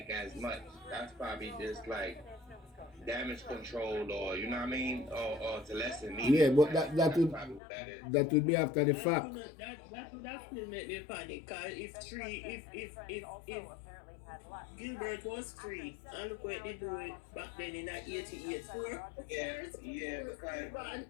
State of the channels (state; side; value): drops out; right; at 7.6 s